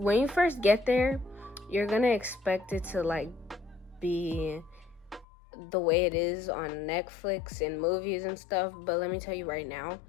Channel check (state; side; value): drops out; right; at 5.2 s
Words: you first get there, you're gonna expect it to like be the way it is on Netflix and movies and stuff, but let me tell you right now,